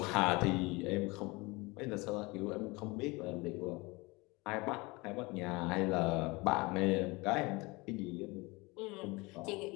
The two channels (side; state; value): right; quieter; 24.5 dB